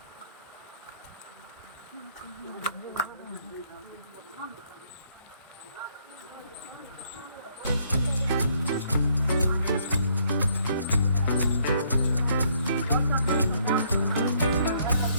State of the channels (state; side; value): inverted; both; correlation -0.68